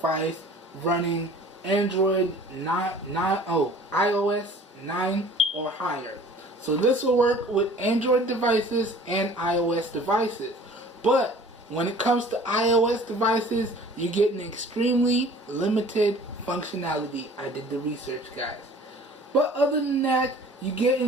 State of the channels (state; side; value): normal; both; correlation 0.48